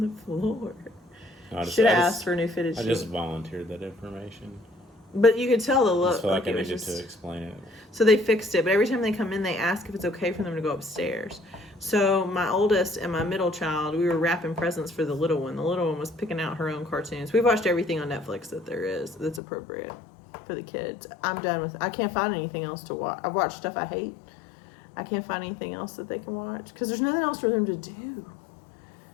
the floor? Should have asked for new fitted sheets. I just volunteered that information. But you could tell the I look. just feel like I it was needed to explain it. So they fixed it, but every time they come in, they ask if it's okay for them to go upstairs. So my oldest and my middle child, we were wrapping presents for the little one. The little one was picking out her own cartoons. We've watched everything on Netflix that there is that's appropriate for the kids. I'm done with it. I can't find anything else to watch. I've watched stuff I hate. I can't find anything else that they can watch because there's nothing else for them to do.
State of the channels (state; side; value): drops out; right; at 19.4 s